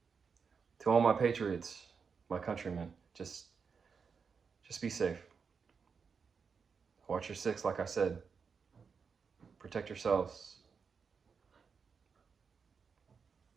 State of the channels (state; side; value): quieter; left; 5.8 dB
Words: to all my patriots, my countrymen, just be safe. Watch your six, like I said. Protect yourselves.